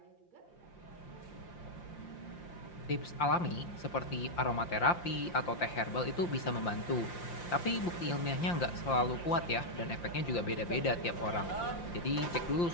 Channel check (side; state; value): right; late; 5.8 ms